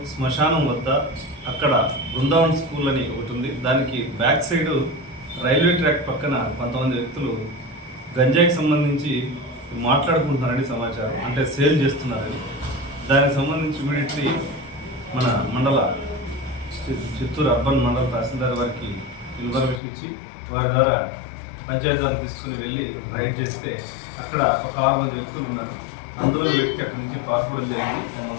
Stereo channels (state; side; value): drops out; right; at 19.8 s